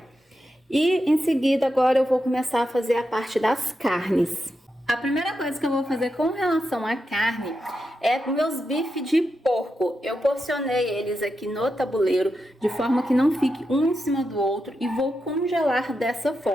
E em seguida agora eu vou começar a fazer a parte das carnes. A primeira coisa que eu vou fazer com relação à carne é meus bifes de porco. Eu porcionei eles aqui no tabuleiro de forma que não fique um em cima do outro e vou congelar dessa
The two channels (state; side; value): normal; both; correlation 0.87